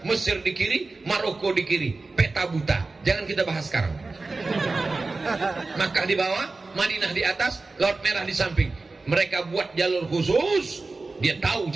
Mesir di kiri, Maroko di kiri. Peta buta, jangan kita bahas sekarang. Makkah di bawah, Madinah di atas, Laut Merah di samping. Mereka buat jalur khusus, dia tahu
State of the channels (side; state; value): left; quieter; 3.6 dB